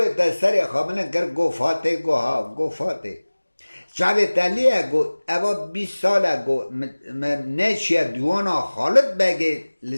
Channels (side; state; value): both; inverted; correlation -1.00